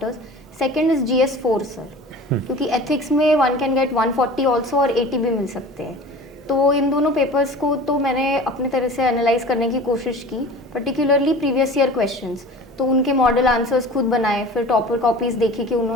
Second is GS 4 sir, क्योंकि एथिक्स में 1 कैन गेट 140 ऑल्सो और 80 भी मिल सकते हैं। तो इन दोनों पेपर्स को तो मैंने अपने तरह से एनालाइज करने की कोशिश की, पर्टिकुलरली प्रीवियस ईयर क्वेश्चंस, तो उनके मॉडल आंसर्स खुद बनाए, फिर टॉपर कॉपीज़ देखी कि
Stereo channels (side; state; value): both; normal; correlation 0.39